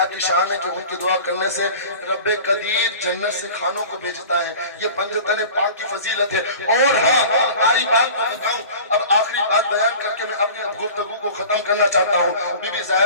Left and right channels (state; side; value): inverted; both; correlation -0.40